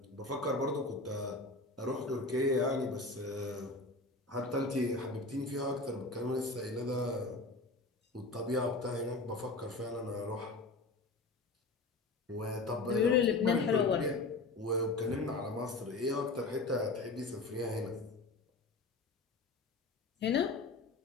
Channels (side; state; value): right; quieter; 3.3 dB